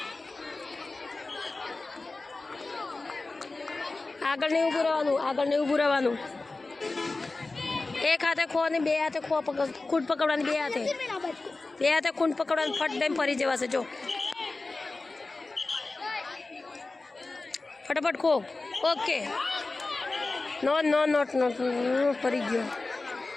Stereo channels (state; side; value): quieter; right; 3.4 dB